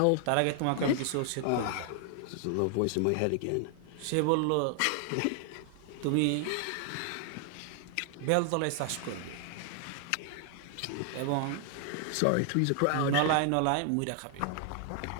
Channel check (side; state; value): both; different; correlation 0.00